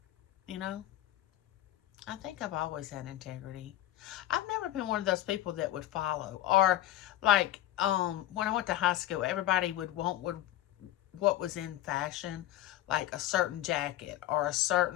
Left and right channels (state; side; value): quieter; right; 13.8 dB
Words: you know? I think I've always had integrity. I've never been one of those people that would follow, or like when I went to high school, everybody would want what was in fashion, like a certain jacket or a